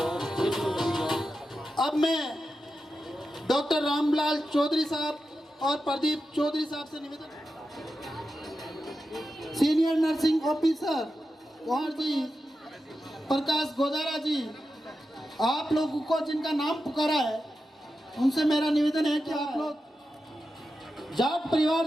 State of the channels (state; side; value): normal; both; correlation 0.90